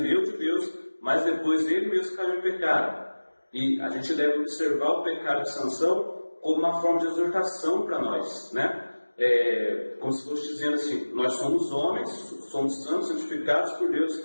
de Deus, mas depois ele mesmo caiu em pecado. E a gente deve observar o pecado de Sansão como uma forma de exortação para nós, né? Como se fosse dizendo assim, nós somos homens, somos santos, santificados por Deus,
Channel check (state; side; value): inverted; both; correlation -1.00